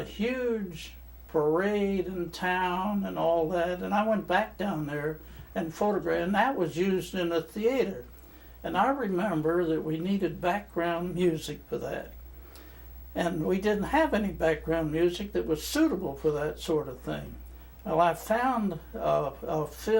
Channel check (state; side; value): identical; both; correlation 1.00